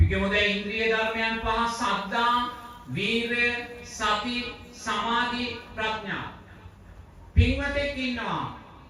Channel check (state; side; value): identical; both; correlation 1.00